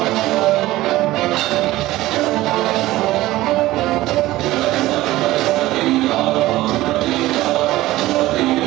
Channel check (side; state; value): left; quieter; 17.0 dB